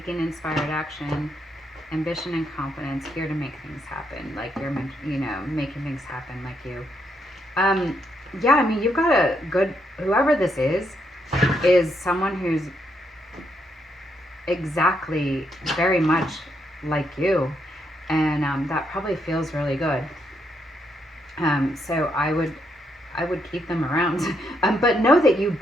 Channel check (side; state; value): both; normal; correlation 0.77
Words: inspired action, ambition and confidence, here to make things happen. Like you're making things happen like you. Yeah, I mean, you've got a good, whoever this is someone who's exactly very much like you, and that probably feels really good. So I would keep them around, but know that you